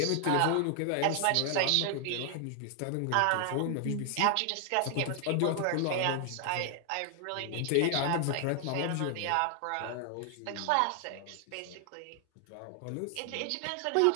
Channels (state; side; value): different; both; correlation 0.00